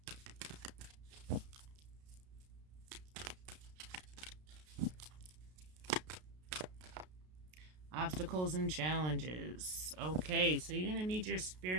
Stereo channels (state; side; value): late; left; 33 ms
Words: Obstacles and challenges. Okay, so you're going to need your